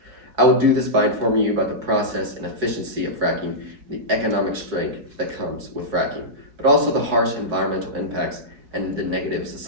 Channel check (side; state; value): left; late; 4.8 ms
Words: I will do this by informing you about the process and efficiency of fracking and the economic strength that comes with fracking, but also the harsh environmental impacts and the negative